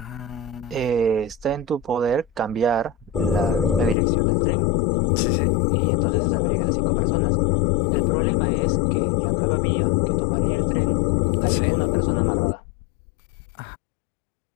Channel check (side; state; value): right; drops out; at 4.0 s